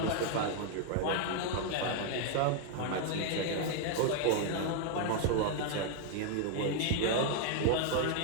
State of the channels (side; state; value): both; different; correlation 0.00